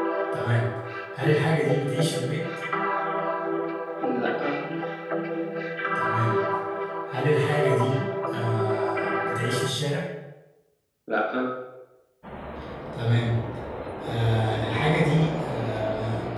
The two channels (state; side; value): identical; both; correlation 1.00